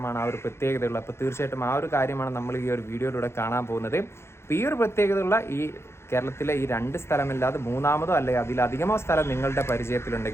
ആ ഒരു പ്രത്യേകതയുള്ളത്. അപ്പോൾ തീർച്ചയായിട്ടും ആ ഒരു കാര്യമാണ് നമ്മൾ ഈ ഒരു വീഡിയോയിലൂടെ കാണാൻ പോകുന്നത്. അപ്പോൾ ഈ ഒരു പ്രത്യേകതയുള്ള ഈ കേരളത്തിലെ ഈ 2 സ്ഥലമല്ലാതെ മൂന്നാമതോ അല്ലെങ്കിൽ അതിലധികമോ സ്ഥലം നിങ്ങളുടെ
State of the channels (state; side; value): late; right; 0.12 ms